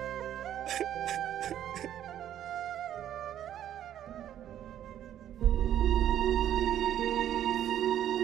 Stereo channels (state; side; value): quieter; left; 11.0 dB